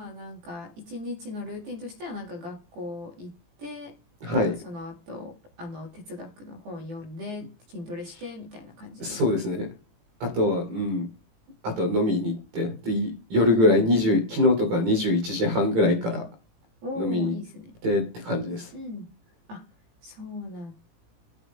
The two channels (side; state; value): left; late; 18 ms